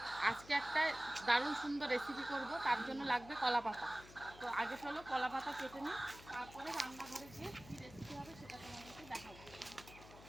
আজকে একটা দারুণ সুন্দর রেসিপি করব, তার জন্য লাগবে কলা পাতা। তো আগে চলো কলা পাতা কেটে নিই, তারপরে রান্নাঘরে গিয়ে কী রেসিপি হবে সেটা তোমাদেরকে দেখাবো।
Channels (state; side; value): noise; left; hum, 18 dB below the sound